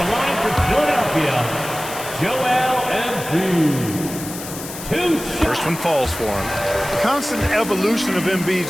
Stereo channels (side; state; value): left; noise; hiss, 11 dB below the sound